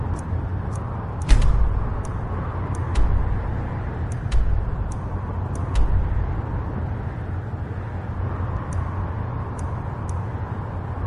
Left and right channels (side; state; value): both; identical; correlation 1.00